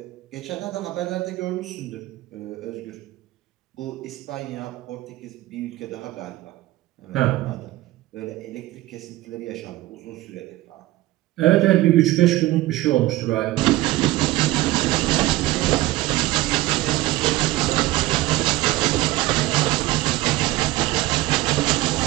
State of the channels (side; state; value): left; quieter; 17.8 dB